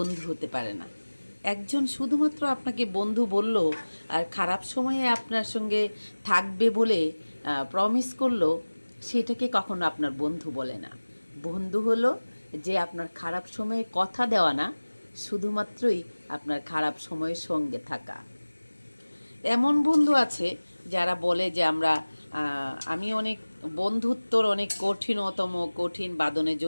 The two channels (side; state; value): both; inverted; correlation -1.00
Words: হতে পারে না। একজন শুধুমাত্র আপনাকে বন্ধু বলল আর খারাপ সময়ে আপনার সঙ্গে থাকবে বলে প্রমিস করলো, সেটাকে কখনো আপনার বন্ধু বলে না। বন্ধু হলো যে আপনার খারাপ সময়ে কথা দেওয়া না, শুধুমাত্রই আপনার খারাপ সময়ের সঙ্গে থাকা। এমন বন্ধু আছে যারা বলে যে আমি অনেক বন্ধুত্বর অনেক কঠিন বাঁধনে